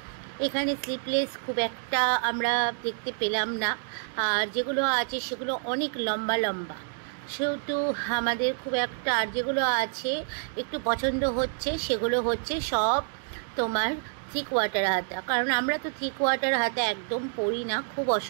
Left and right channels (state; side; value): silent; left; digital silence